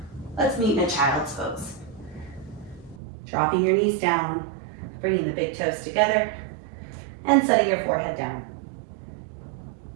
Let's meet in a child's pose. Dropping your knees down, bringing the big toes together, and setting your forehead down.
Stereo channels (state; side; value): drops out; left; at 3.0 s